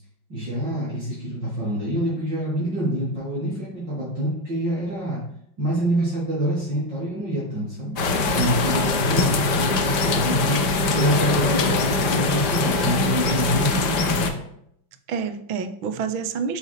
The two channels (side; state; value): left; late; 5.1 ms